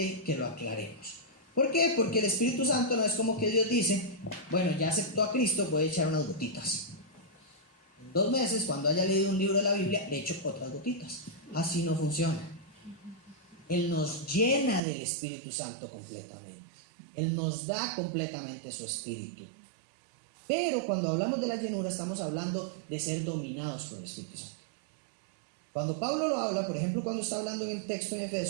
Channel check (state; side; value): drops out; left; at 14.8 s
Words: que lo aclaremos. ¿Por qué? Porque el Espíritu Santo no es como que Dios dice, bueno, ya aceptó a Cristo, voy a echar unas gotitas. En 2 meses, cuando haya leído un libro de la Biblia, le echo otras gotitas. Así no funciona. Él nos llena del Espíritu Santo completamente. Él nos da completamente su Espíritu. Pero cuando hablamos de la llenura, estamos hablando de ser dominados por el Espíritu Santo. Cuando Pablo lo habla, por ejemplo, cuando está hablando en el texto en